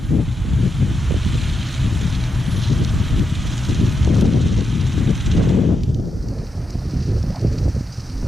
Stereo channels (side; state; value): both; normal; correlation 0.86